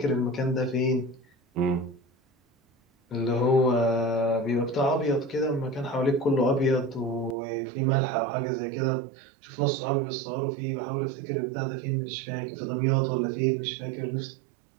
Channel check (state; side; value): drops out; left; at 7.4 s